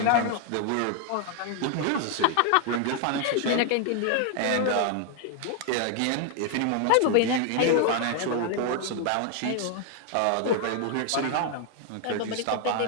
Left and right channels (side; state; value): both; different; correlation 0.00